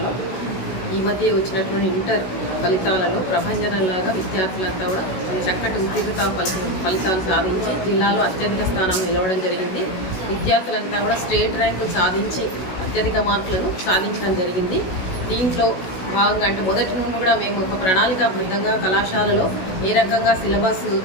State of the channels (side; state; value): right; late; 16 ms